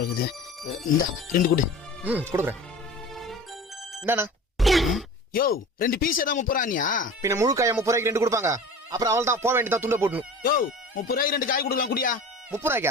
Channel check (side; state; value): both; normal; correlation 0.38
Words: இருக்குது இந்த 2 கொடு கொடுக்குறேன் என்னண்ணா யோ 2 பீஸ் தான் 30 ரூபானியா பின்ன முழு காய 30 ரூபாய்க்கு 2 கொடுப்பாங்க அப்புறம் அவள் தான் போக வேண்டியதான் துண்ட போடணும் யோ 30 ரூபாய்க்கு 2 காய் கொடுக்கலாம் குடியா 30